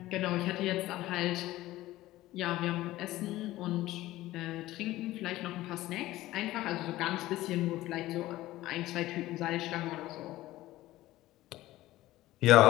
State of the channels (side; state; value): right; quieter; 16.4 dB